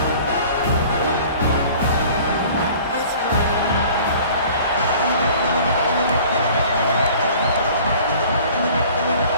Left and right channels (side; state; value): both; inverted; correlation -0.48